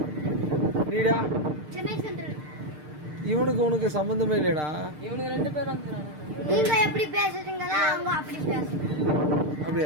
நீடா? இவனுக்கு உனக்கு சம்பந்தமே இல்லையடா. இவனுக்கு 2 பேர் வந்துறாங்க. நீங்க எப்படி பேசுறீங்களா அவங்க அப்படி பேசுறாங்க.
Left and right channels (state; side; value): late; left; 6.6 ms